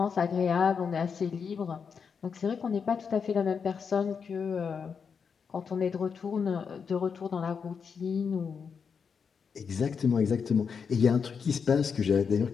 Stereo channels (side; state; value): right; quieter; 6.2 dB